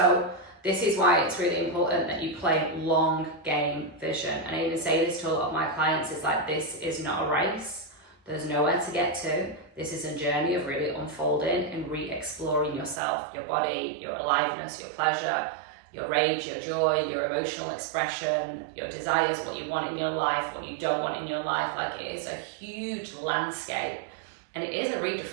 this is why it's really important that you play long game vision. And I even say this to a lot of my clients, it's like, this is not a race. There's nowhere to get to. This is a journey of really unfolding and re-exploring yourself, your body, your aliveness, your pleasure, your rage, your joy, your emotional expression, your desires, what you want in your life, what you don't want in your life. Like, it is a huge landscape. And it is a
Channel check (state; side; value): drops out; left; at 13.0 s